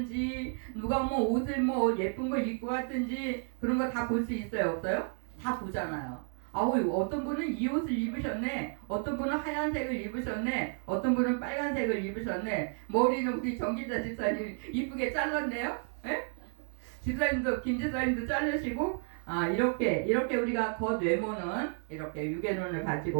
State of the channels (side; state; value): left; silent; 56 dB below the other